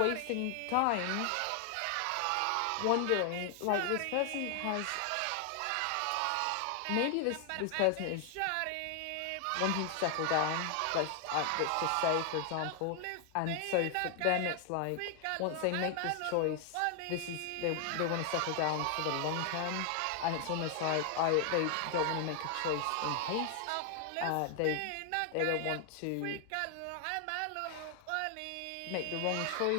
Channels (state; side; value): different; both; correlation 0.00